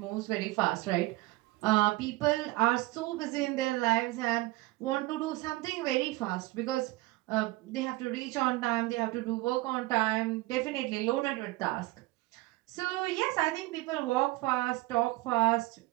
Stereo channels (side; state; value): left; quieter; 20.1 dB